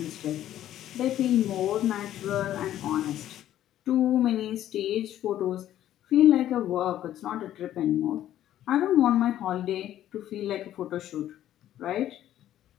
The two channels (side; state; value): right; quieter; 12.2 dB